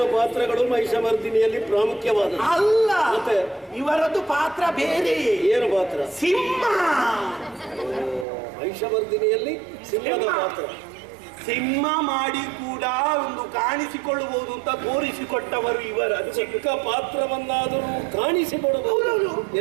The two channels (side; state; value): left; drops out; at 8.2 s